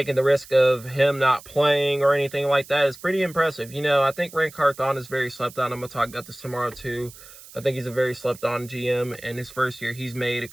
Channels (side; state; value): right; noise; hiss, 19 dB below the sound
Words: the risk of him not playing or anything like that is pretty impressive. You know, I think Ray Carthon is very slept on. I'm going to talk about this tomorrow too. I think he's a very slept on GM. In his first year, he's made a